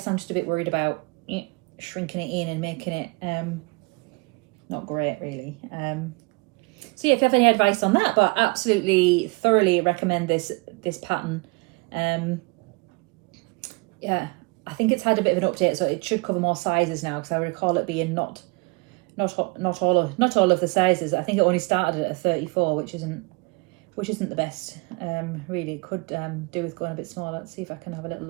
I'm just a bit worried about shrinking it in and making it not great really. So yeah, if you have any advice on that, but absolutely thoroughly recommend this pattern. Yeah, I think it's had a bit of an update, so it should cover more sizes now, because I recall it being not all of the sizes. I think it only started at a 34, which isn't the best. Really, it could do with going a bit smaller. Let's see if I can have a little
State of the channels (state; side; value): quieter; left; 28.7 dB